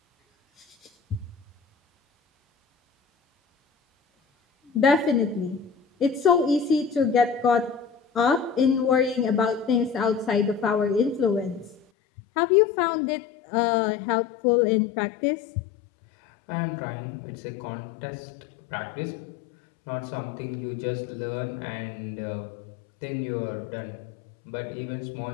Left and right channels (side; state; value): right; drops out; at 11.8 s